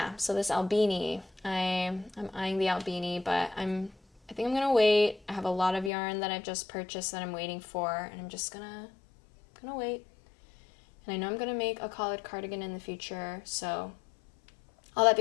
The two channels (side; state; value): right; drops out; at 5.9 s